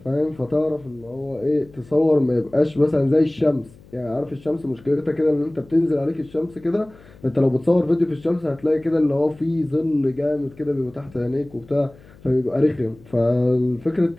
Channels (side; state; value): left; noise; hum, 24 dB below the sound